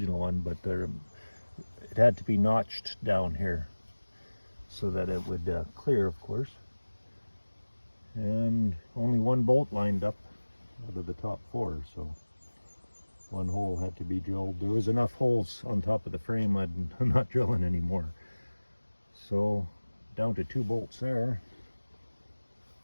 one, but it had to be notched down here so that it would clear, of course. And only one bolt lined up out of the top 4, so one hole had to be drilled. There was enough holes on top of the frame, I'm not drilling anymore. So down to 2 bolts there,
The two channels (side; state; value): both; inverted; correlation -1.00